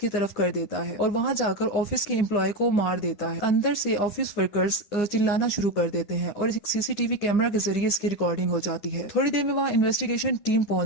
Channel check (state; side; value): late; right; 10 ms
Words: तरफ कर देता है और वहाँ जाकर ऑफिस के एम्प्लॉय को मार देता है। अंदर से ऑफिस वर्कर्स चिल्लाना शुरू कर देते हैं और एक सीसीटीवी कैमरा के जरिए इसकी रिकॉर्डिंग हो जाती है। थोड़ी देर में वहाँ इन्वेस्टिगेशन टीम